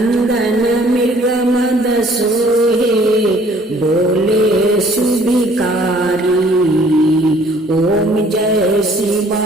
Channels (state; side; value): normal; both; correlation 0.58